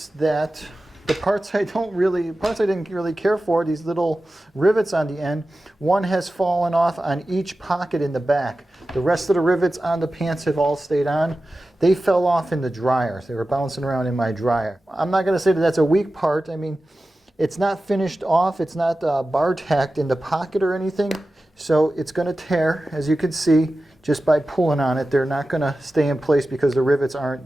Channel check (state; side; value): normal; both; correlation 0.94